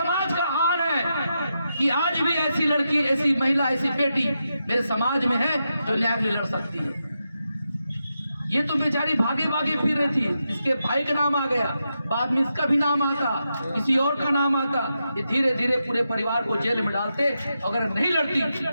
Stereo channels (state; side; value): inverted; both; correlation -0.86